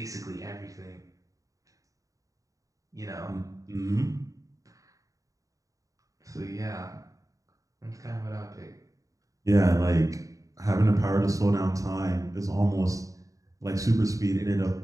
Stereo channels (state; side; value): late; left; 0.16 ms